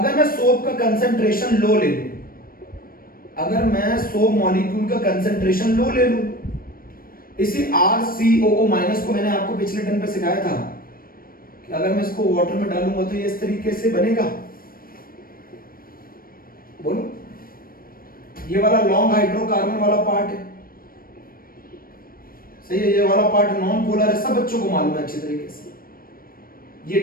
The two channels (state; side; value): late; right; 0.42 ms